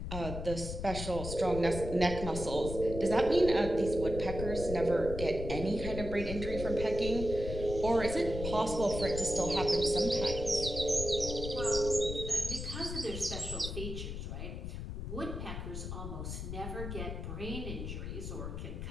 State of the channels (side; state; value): left; noise; rumble, 6 dB below the sound